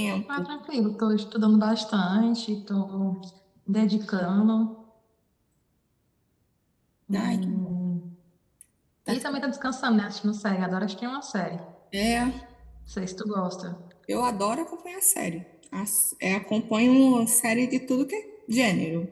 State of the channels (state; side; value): identical; both; correlation 1.00